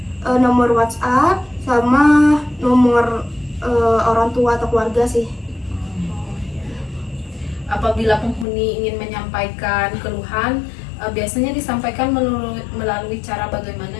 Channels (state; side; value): drops out; right; at 8.5 s